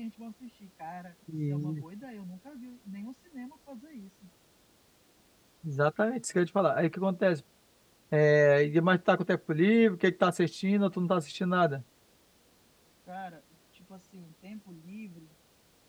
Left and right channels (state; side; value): identical; both; correlation 1.00